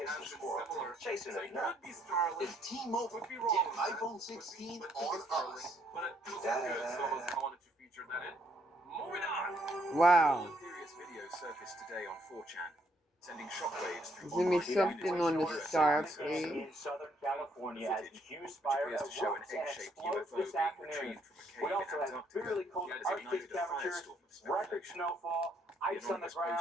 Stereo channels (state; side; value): normal; both; correlation 0.70